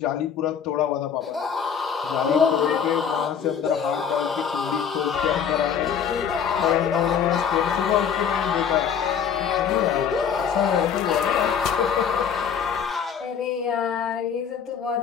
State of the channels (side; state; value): right; quieter; 7.5 dB